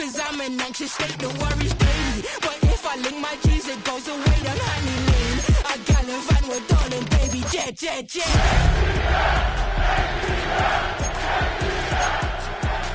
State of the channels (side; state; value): both; identical; correlation 1.00